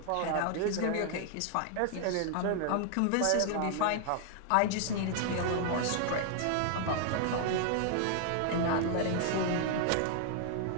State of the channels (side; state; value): both; different; correlation 0.00